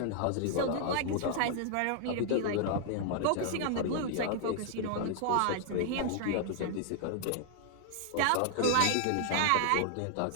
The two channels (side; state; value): both; different; correlation -0.01